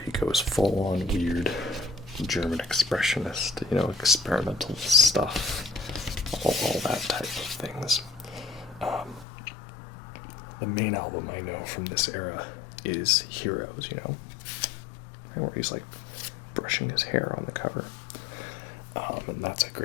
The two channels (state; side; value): drops out; right; at 9.2 s